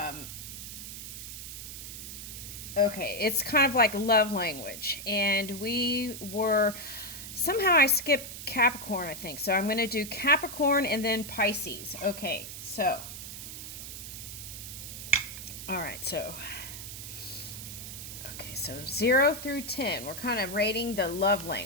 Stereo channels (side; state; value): right; noise; hiss, 10 dB below the sound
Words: okay, it's kind of like love language, and somehow I skipped Capricorn, I think. So I'm going to do Capricorn and then Pisces. Okay, so all right, so. Okay, so 0 through 10, we're kind of rating the love